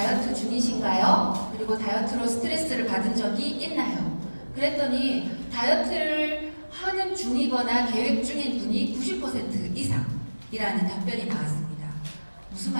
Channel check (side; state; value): both; inverted; correlation -1.00